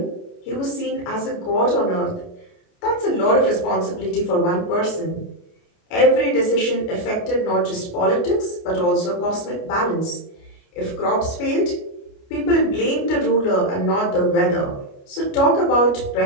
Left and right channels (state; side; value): late; right; 29 ms